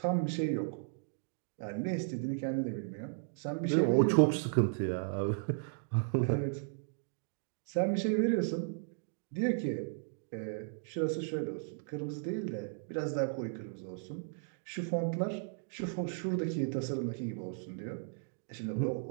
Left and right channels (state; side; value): silent; left; digital silence